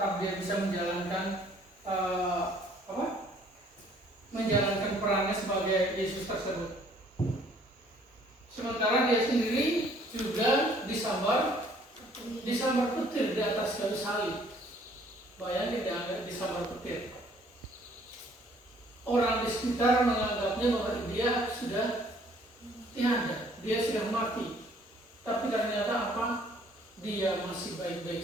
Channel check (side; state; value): both; normal; correlation 0.60